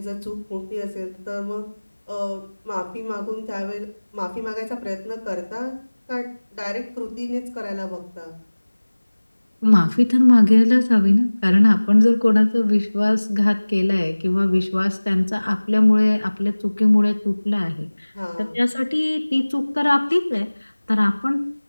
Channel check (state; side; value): inverted; both; correlation -1.00